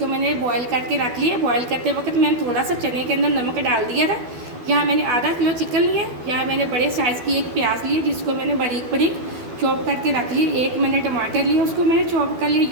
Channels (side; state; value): left; late; 12 ms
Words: मैंने बॉयल करके रख लिया। बॉयल करते वक्त मैंने थोड़ा सा चने के अंदर नमक डाल दिया था। यहाँ मैंने आधा किलो चिकन लिया। यहाँ मैंने बड़े साइज़ की एक प्याज ली, जिसको मैंने बारीक बारीक चॉप करके रख ली। 1 मैंने टमाटर लिया, उसको मैंने चॉप कर लिया।